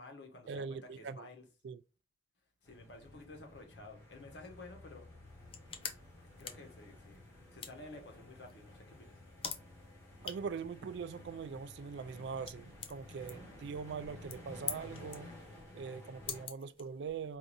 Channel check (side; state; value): both; normal; correlation 0.10